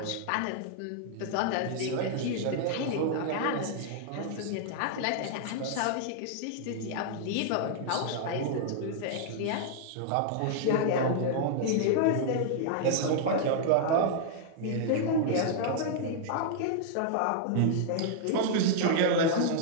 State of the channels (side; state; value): both; different; correlation -0.01